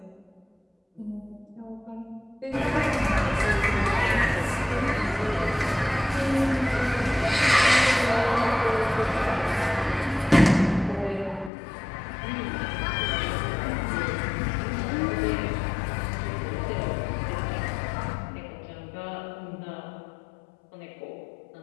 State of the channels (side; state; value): right; drops out; at 11.5 s